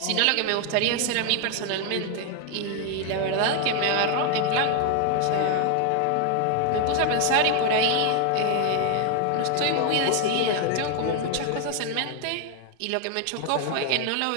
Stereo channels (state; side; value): different; both; correlation 0.01